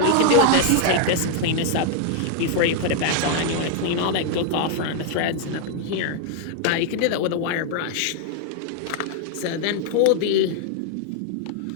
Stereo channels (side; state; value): both; different; correlation 0.00